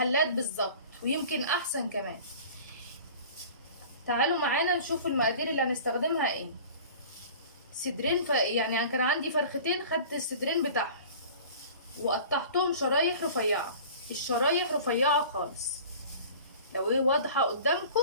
بالظبط ويمكن احسن كمان. تعالوا معانا نشوف المقادير اللي هنستخدمها ايه. صدرين يعني كان عندي فرختين، خدت الصدرين بتاعهم وقطعتهم شرايح رفيعه، الشرايح رفيعه خالص. لو ايه واضحه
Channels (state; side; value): inverted; both; correlation -0.43